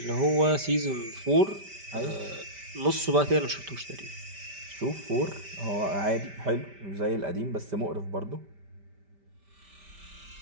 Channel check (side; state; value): left; late; 5.1 ms